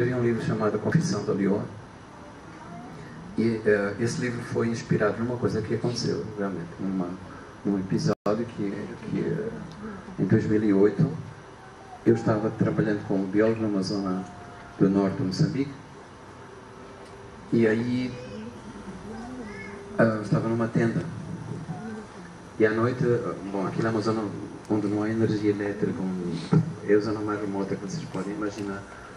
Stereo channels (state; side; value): identical; both; correlation 1.00